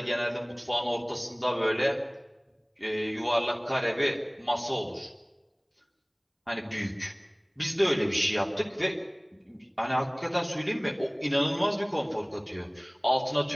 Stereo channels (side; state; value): both; identical; correlation 1.00